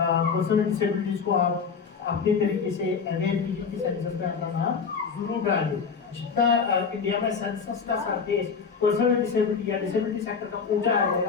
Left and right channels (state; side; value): quieter; right; 5.8 dB